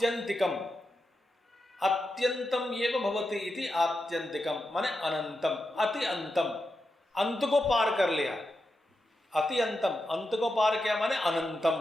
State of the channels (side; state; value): both; normal; correlation 0.88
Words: अत्यंतम एव भवति इति आत्यंतिकम माने अनंतम, अति अंतम, अंत को पार कर लिया। अति अंतम, अंत को पार किया माने अनंतम।